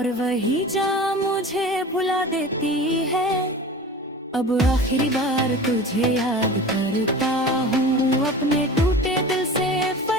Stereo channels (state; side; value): normal; both; correlation 0.36